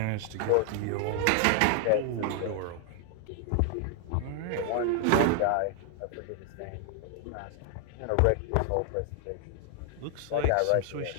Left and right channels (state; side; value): different; both; correlation 0.00